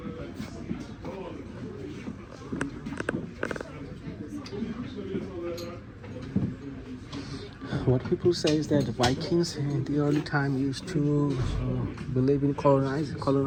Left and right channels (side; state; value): both; identical; correlation 1.00